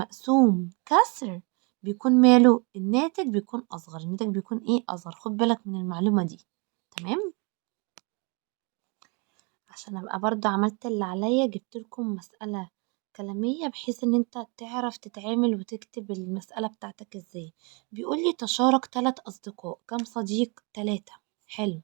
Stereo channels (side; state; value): left; quieter; 32.2 dB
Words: كسر بيكون ماله؟ الناتج بيكون اصغر. الناتج بيكون ايه؟ اصغر. خد بالك من المعلومة دي. تمام. عشان ابقى برضه عملت اللي عليا، جبت لكم مسألة كلامية بحيث ان انت تعرف تتعامل وتكتب المسألة بتاعتك ازاي. بيقول لي تشارك 3 اصدقاء. كم صديق؟ 3. حلو.